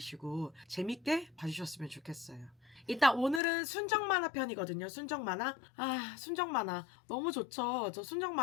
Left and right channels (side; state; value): right; drops out; at 3.4 s